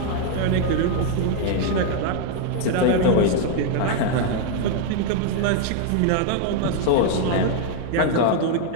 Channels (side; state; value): both; different; correlation 0.00